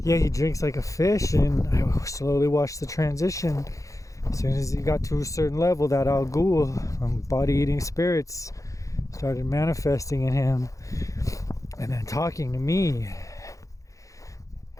he drinks like a fish, and I slowly watched the transition. As soon as he got to a certain level, that Al Ghul, body-eating spirits, started manifesting in him and then talking to me.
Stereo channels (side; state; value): right; late; 0.16 ms